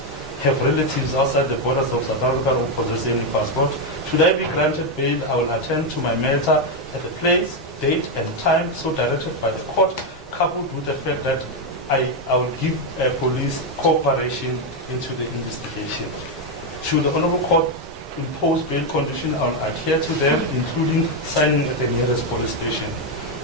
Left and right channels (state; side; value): normal; both; correlation 0.04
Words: have relatives outside the borders of South Africa or possess any passport. Should I be granted bail, I will attend to my matter at the place, date, and time so directed by the court, coupled with the fact that I will give police cooperation into the investigation. Should the Honorable Court impose bail conditions, I will adhere to them, including signing at the nearest police station.